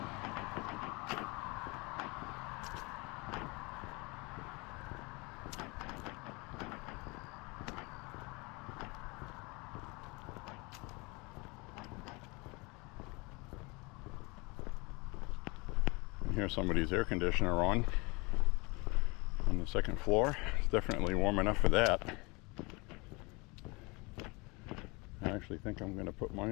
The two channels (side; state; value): right; quieter; 26.9 dB